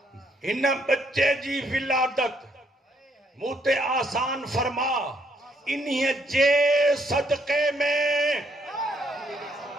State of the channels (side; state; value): both; normal; correlation 0.71